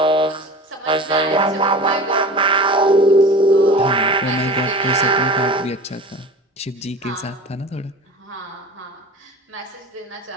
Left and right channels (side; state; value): both; normal; correlation 0.36